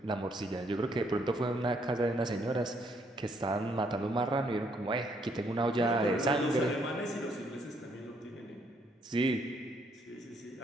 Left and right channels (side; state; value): both; normal; correlation 0.70